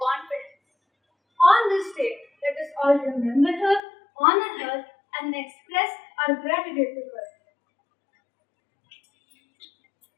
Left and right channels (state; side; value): drops out; right; at 3.8 s